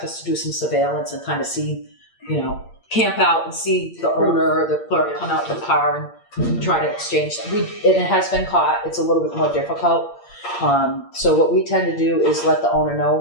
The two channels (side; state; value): right; late; 8.7 ms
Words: us to do some surveillance and kind of see, camp out and see the owner or the clerk come out to the car and try to exchange. And it has been caught. It's a little bit more difficult. So what we tend to do is let the owner